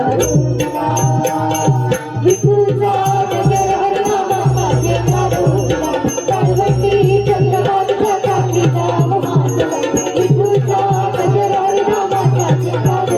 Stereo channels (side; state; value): both; identical; correlation 1.00